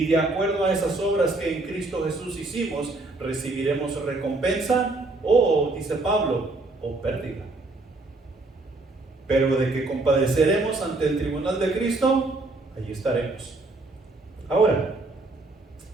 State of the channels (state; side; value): quieter; left; 3.1 dB